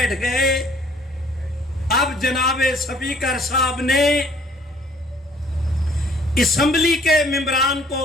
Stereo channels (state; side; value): normal; both; correlation 0.58